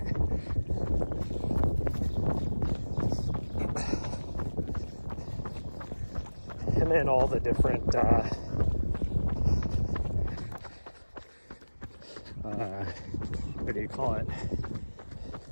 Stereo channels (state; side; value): inverted; both; correlation -1.00